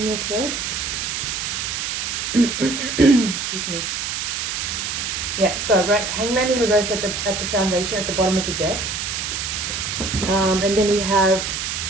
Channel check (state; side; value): noise; right; hiss, 3 dB below the sound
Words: your spread. Excuse me. Yeah, so right, Hangman in reverse at the foundation at the bottom of the deck. And then we have